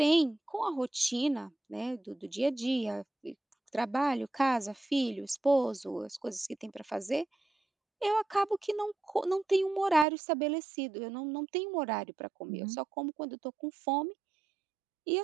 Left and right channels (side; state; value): left; drops out; at 10.1 s